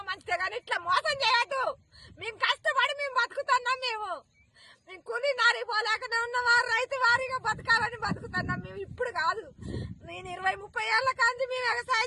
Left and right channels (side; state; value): both; identical; correlation 1.00